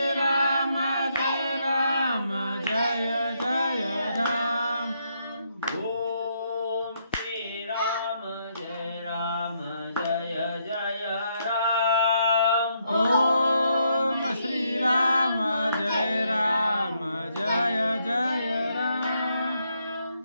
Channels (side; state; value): both; inverted; correlation -0.76